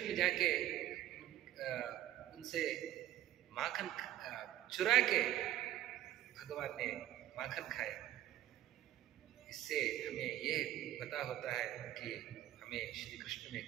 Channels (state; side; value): quieter; left; 13.5 dB